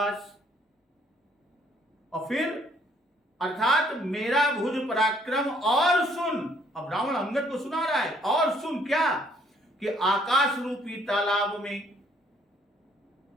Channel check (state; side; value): normal; both; correlation 0.64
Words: और फिर अर्थात मेरा भुज पराक्रम और सुन। अब रावण अंगद को सुना रहा है, और सुन क्या कि आकाश रूपी तालाब में